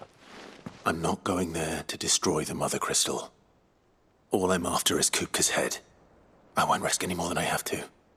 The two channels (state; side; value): identical; both; correlation 1.00